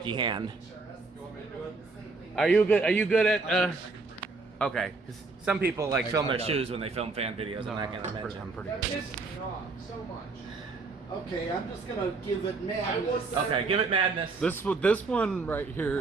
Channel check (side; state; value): left; quieter; 3.9 dB